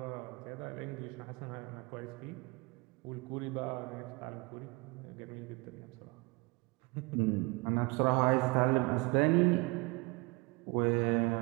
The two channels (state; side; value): quieter; left; 27.0 dB